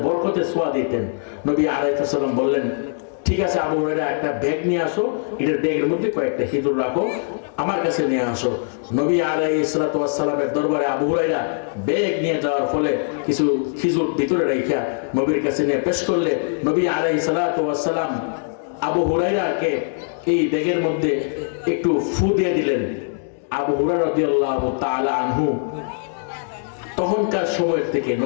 বরকতে ছোঁয়া দিতেন। নবী আলাইহিস সালাম বললেন, ঠিক আছে আবু হুরায়রা, একটা ব্যাগ নিয়ে আসো, এটার ব্যাগের মধ্যে কয়েকটা খিজুর রাখো, আমার কাছে নিয়ে আসো। নবী আলাইহিস সালামের দরবারে আবু হুরায়রা ব্যাগ নিয়ে যাওয়ার ফলে কিছু খিজুর ভিতরে রাখিয়া নবীর কাছে নিয়ে পেশ করলে নবী আলাইহিস সালাম আবু হুরায়রাকে এই ব্যাগের মধ্যে একটু ফু দিয়ে দিলেন। আবু হুরায়রা রাদিয়াল্লাহু তাআলা আনহু তখনকার সময়ের থেকে,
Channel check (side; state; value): right; silent; digital silence